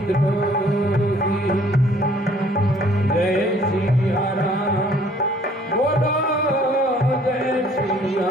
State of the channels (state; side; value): normal; both; correlation 0.58